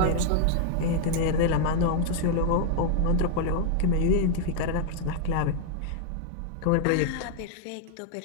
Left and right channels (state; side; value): different; both; correlation 0.00